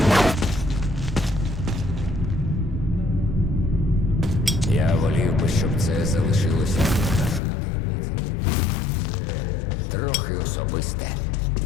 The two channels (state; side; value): drops out; right; at 7.4 s